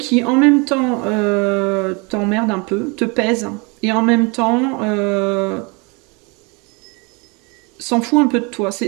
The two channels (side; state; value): left; quieter; 29.9 dB